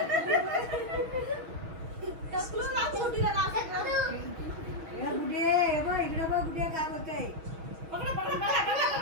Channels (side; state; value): left; late; 6.3 ms